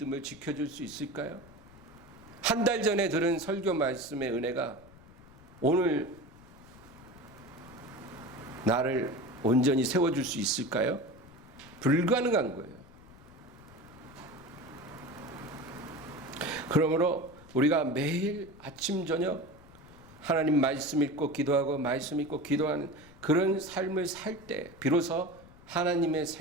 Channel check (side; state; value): left; noise; rumble, 22 dB below the sound